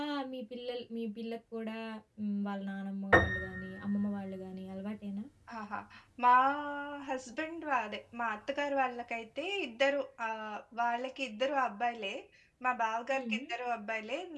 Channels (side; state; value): both; identical; correlation 1.00